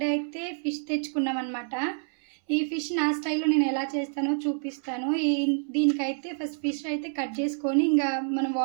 అయితే ఫిష్ తెచ్చుకున్నాం అనమాట. ఈ ఫిష్ నా స్టైల్లో నేను ఎలా చేస్తానో చూపిస్తాను. దీనికైతే ఫస్ట్ ఫిష్ అయితే కట్ చేసుకొని ఇంకా మనం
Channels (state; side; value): silent; left; 60 dB below the other